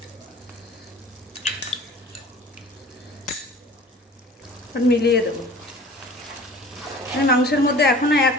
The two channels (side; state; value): both; normal; correlation 0.44